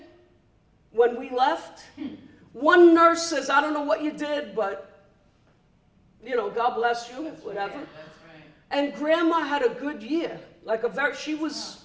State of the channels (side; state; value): both; identical; correlation 1.00